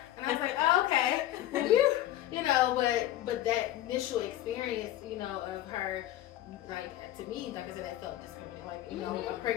I was like, oh, okay. You know, but that initial experience, you know, of her, like, to me, like I said, I felt discriminated. Like, you know, a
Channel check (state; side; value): quieter; right; 13.6 dB